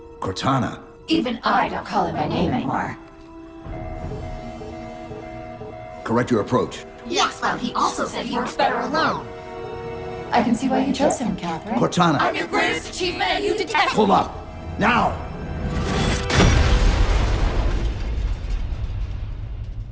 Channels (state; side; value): identical; both; correlation 1.00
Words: Cortana. Even I don't call him by name anymore. Correct your approach. Yes, well, he also said he works better alone. I can see why you chose him, Catherine. Cortana. I'm your greatest achievement and you detest Pull up. Now!